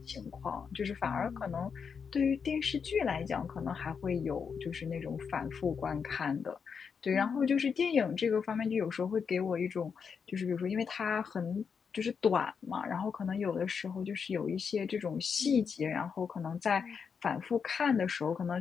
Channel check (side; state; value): right; quieter; 6.2 dB